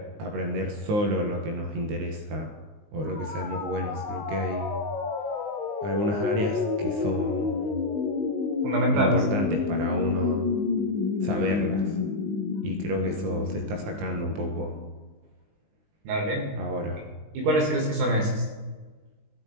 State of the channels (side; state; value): left; late; 19 ms